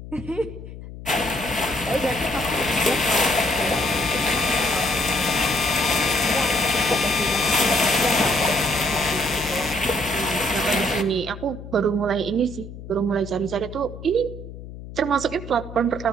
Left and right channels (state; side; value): noise; left; hum, 13 dB below the sound